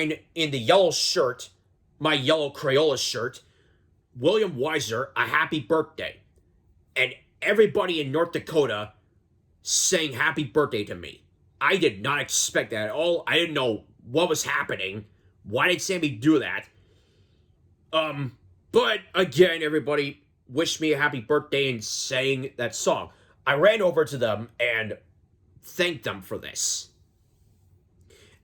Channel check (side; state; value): both; identical; correlation 1.00